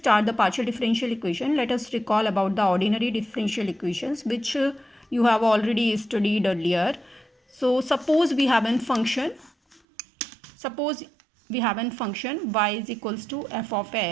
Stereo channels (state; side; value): drops out; left; at 9.8 s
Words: the partial differential equation, let us recall about the ordinary differential equations which you have already studied earlier. So suppose we have a function y is equals to f of